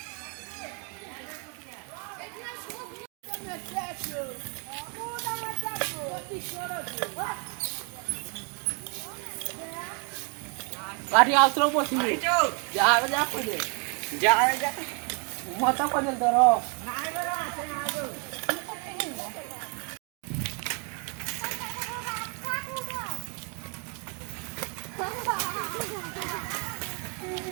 गाडी आउतरो बसिबे जा जा पडे जा जा मत पडे दरो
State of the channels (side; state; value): left; quieter; 36.1 dB